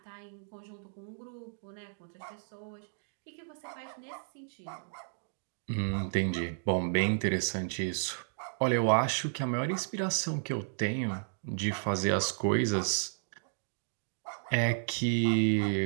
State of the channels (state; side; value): silent; left; digital silence